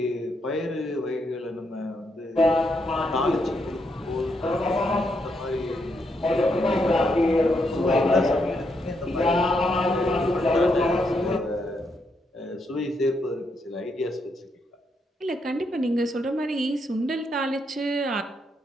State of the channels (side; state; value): both; normal; correlation 0.78